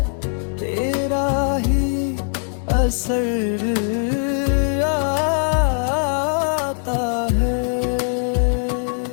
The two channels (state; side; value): silent; right; 65 dB below the other